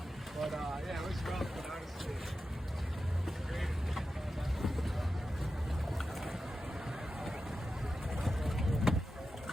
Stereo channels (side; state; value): both; normal; correlation 0.91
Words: yeah, it was rough, but honestly, great.